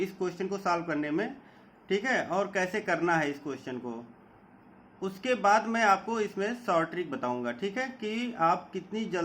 को सॉल्व करने में, ठीक है, और कैसे करना है इस क्वेश्चन को। उसके बाद मैं आपको इसमें शॉर्ट ट्रिक बताऊंगा, ठीक है, कि आप कितनी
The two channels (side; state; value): both; identical; correlation 1.00